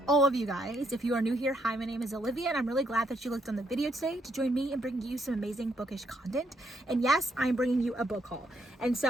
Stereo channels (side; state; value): both; normal; correlation 0.74